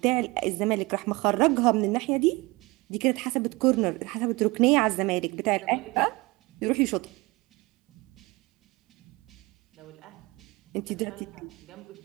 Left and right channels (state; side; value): quieter; left; 23.7 dB